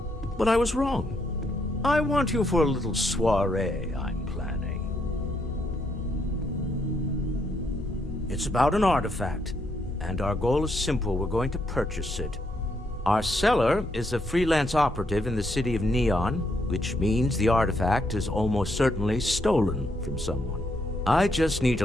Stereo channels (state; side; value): normal; both; correlation 0.75